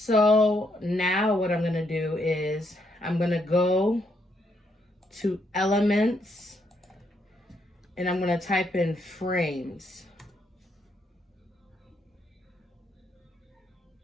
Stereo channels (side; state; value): both; normal; correlation 0.75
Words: now what I'm going to do is I'm going to go to elements and I'm going to type in frames.